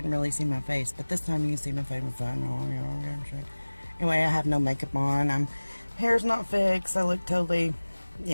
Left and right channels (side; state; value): both; inverted; correlation -1.00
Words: really see my face. But this time you can see my face. Anyway, I have no makeup on. Hair's not fixed. I look totally,